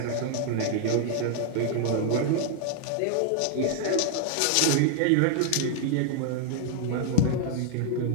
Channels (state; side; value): different; both; correlation 0.00